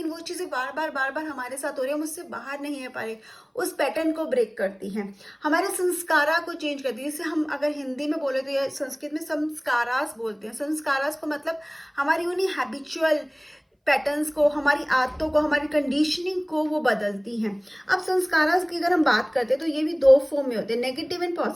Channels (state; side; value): identical; both; correlation 1.00